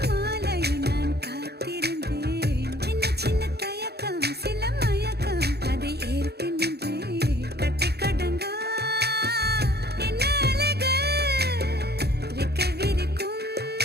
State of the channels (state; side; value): late; left; 0.47 ms